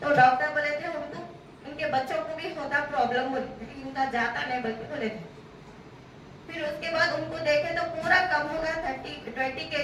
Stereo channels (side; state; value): both; identical; correlation 1.00